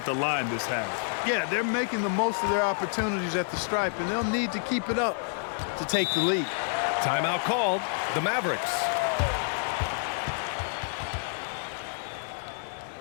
the line this half. Yeah, they're making the most of their opportunities at the stripe, and they'll need to keep it up to take the lead. Timeout called. The Mavericks.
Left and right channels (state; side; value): silent; right; 59 dB below the other